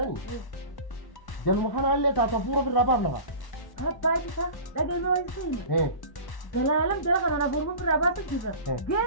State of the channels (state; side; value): late; right; 1.1 ms